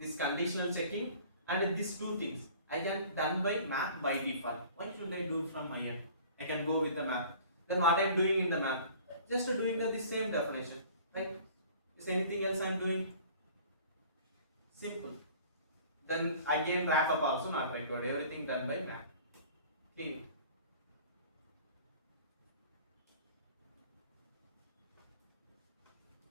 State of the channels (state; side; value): inverted; both; correlation -0.47